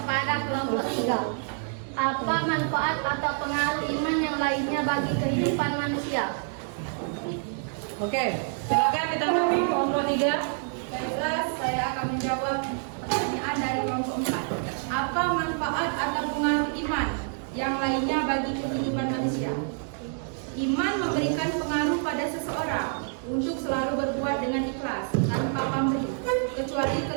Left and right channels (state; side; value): silent; left; 60 dB below the other